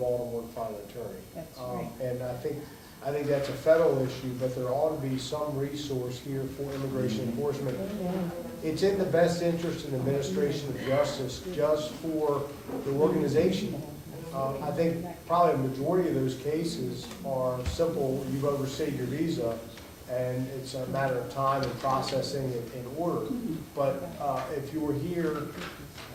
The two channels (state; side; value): identical; both; correlation 1.00